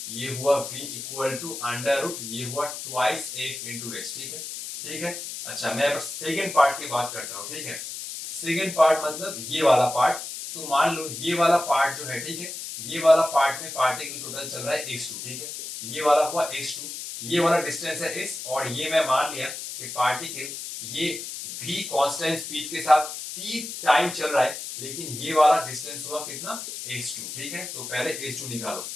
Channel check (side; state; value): left; noise; hiss, 8 dB below the sound